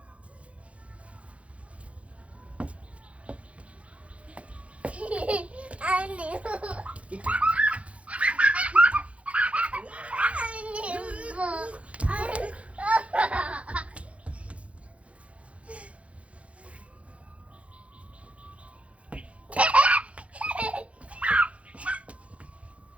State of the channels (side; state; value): left; late; 0.063 ms